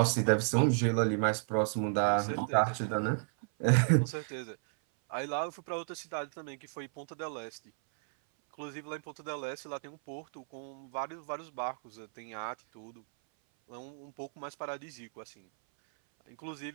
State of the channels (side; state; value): left; silent; 55 dB below the other